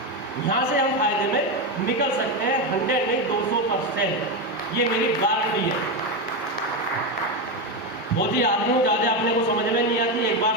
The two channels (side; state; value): both; normal; correlation 0.11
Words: यहाँ से हम फायदे में निकल सकते हैं 100 नहीं 200%, ये मेरी गारंटी है। फौजी आदमी हूँ, ज़्यादा अपने को समझ में नहीं आती, एक बार